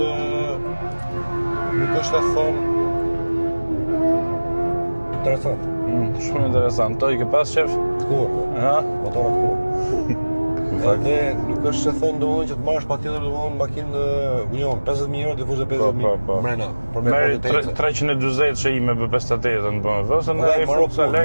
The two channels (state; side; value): inverted; both; correlation -1.00